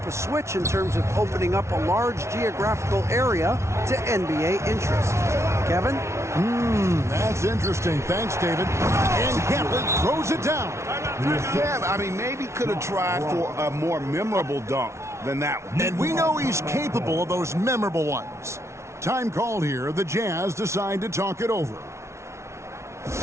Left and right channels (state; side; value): late; left; 0.13 ms